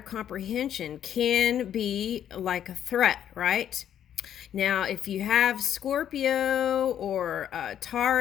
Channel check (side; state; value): right; quieter; 10.0 dB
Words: can be like a threat, right? Now, if you have Scorpio or